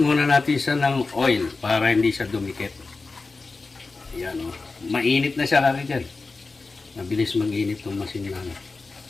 muna natin siya ng oil para hindi siya dumikit. Ayan, oh. Mainit na siya, kakitchen. Mabilis mag-init itong machine natin.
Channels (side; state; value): right; quieter; 3.9 dB